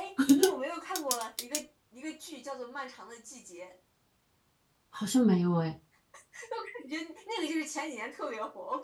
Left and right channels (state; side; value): identical; both; correlation 1.00